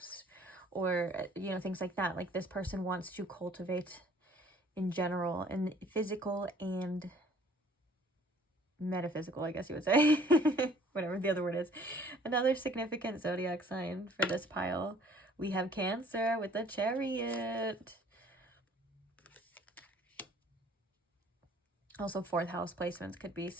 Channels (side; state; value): both; normal; correlation 0.56